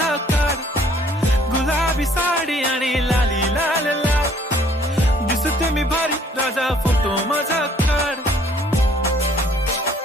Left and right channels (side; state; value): both; normal; correlation 0.60